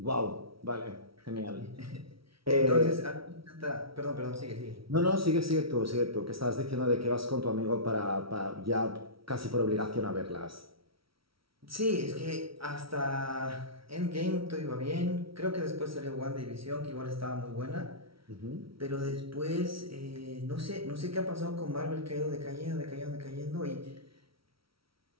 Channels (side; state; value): left; late; 0.75 ms